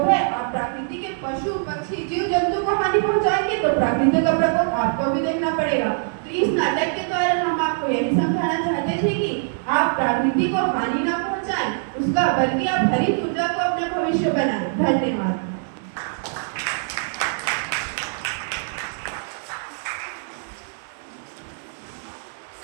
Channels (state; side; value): silent; left; 56 dB below the other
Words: है। आप प्रकृति के पशु पक्षी जीव जंतु को हानि पहुंचाएंगे तो प्रकृति का प्रकोप आपको भी देखना पड़ेगा। तो इस नाटक के द्वारा हम आपको यही समझाना चाहते थे कि आप प्रकृति को हानि ना पहुंचाएं उसका, बल्कि आप हरित ऊर्जा को अपना भविष्य बनाएं। धन्यवाद।